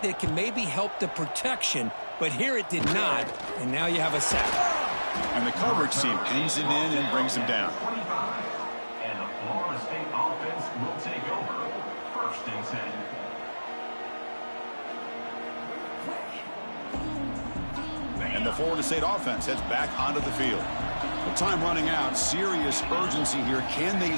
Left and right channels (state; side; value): inverted; both; correlation -1.00